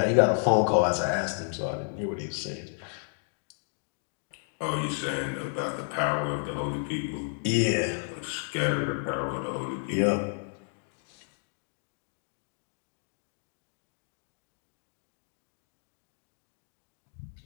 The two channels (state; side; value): silent; right; digital silence